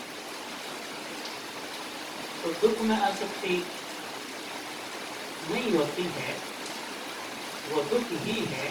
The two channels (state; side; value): identical; both; correlation 1.00